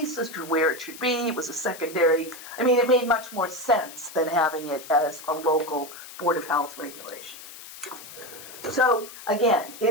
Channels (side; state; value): left; noise; hiss, 15 dB below the sound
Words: as to where it should be. It was a secondary. I mean, it made much more sense than having it as a local Board of Health regulation. So again,